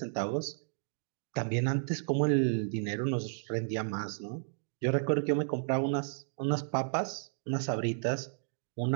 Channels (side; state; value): left; silent; digital silence